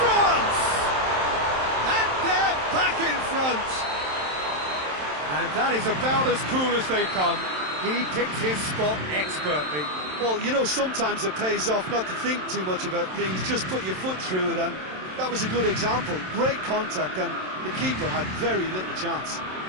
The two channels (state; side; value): late; left; 27 ms